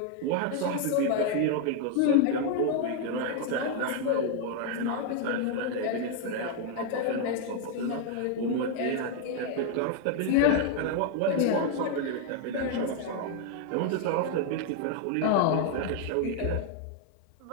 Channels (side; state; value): both; different; correlation 0.00